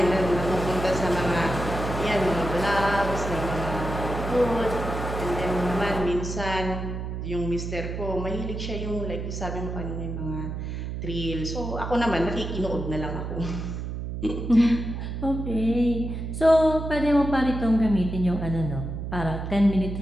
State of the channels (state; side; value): noise; right; hum, 5 dB below the sound